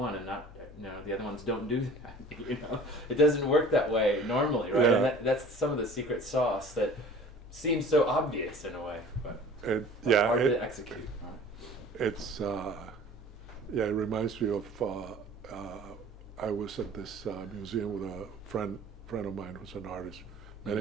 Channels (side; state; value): both; normal; correlation 0.45